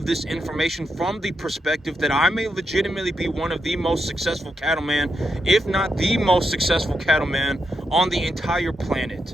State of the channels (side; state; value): both; normal; correlation 0.83